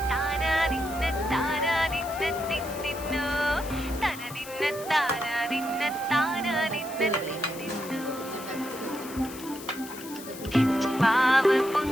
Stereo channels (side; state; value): left; noise; hiss, 14 dB below the sound